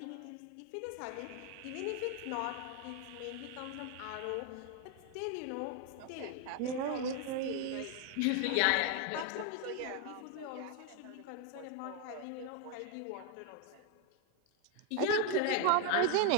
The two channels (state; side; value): different; both; correlation 0.01